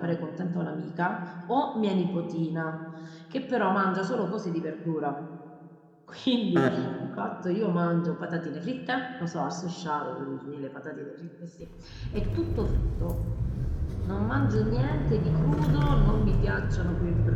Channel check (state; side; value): identical; both; correlation 1.00